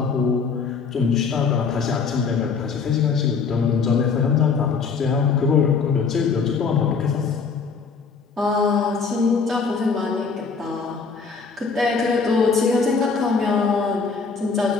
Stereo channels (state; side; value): quieter; right; 5.2 dB